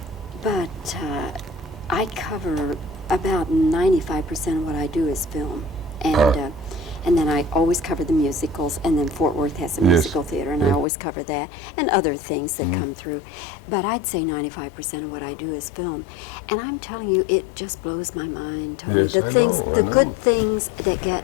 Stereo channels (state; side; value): drops out; right; at 10.9 s